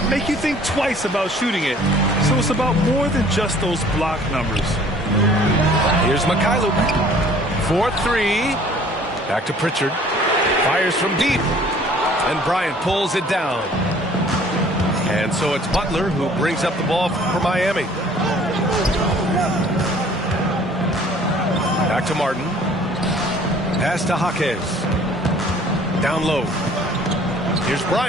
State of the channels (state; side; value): normal; both; correlation 0.54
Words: make you think twice about shooting it. So it's about more than just those block numbers. Here's Mikhailuk. 4-3. Back to Pritchard. Fires from deep. And Bryant pulls it down. And so it's Butler who brings up the ball for Miami. Back to Martin. Pass to Jaquez. Down low. Here's